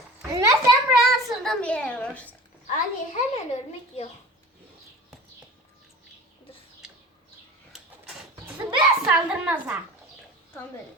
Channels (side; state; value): both; normal; correlation 0.38